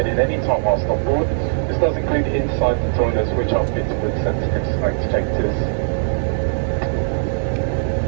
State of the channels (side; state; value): left; silent; digital silence